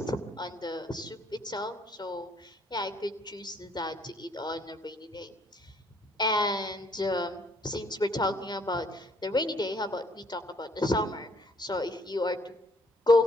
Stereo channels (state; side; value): normal; both; correlation 0.65